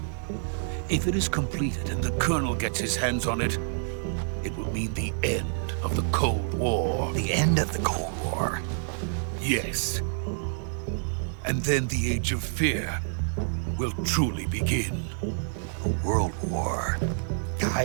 If it is completed and the Colonel gets his hands on it, it will mean the end of the Cold War. The end of the Cold War? Yes. And then the Age of Fear will truly begin. A world war. I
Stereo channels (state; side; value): silent; left; 59 dB below the other